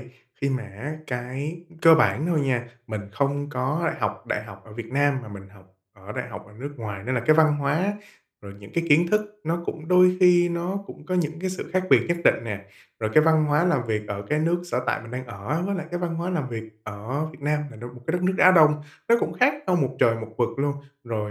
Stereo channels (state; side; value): identical; both; correlation 1.00